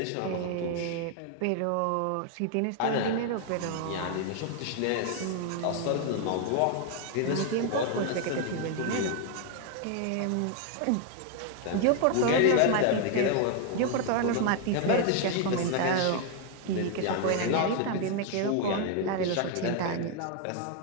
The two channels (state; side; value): different; both; correlation 0.01